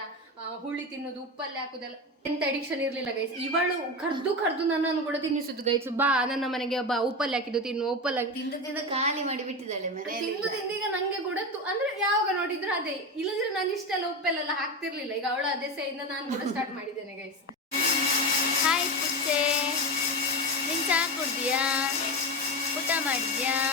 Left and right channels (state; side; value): normal; both; correlation 0.20